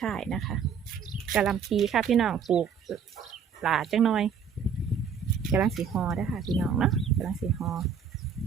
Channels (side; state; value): left; quieter; 6.7 dB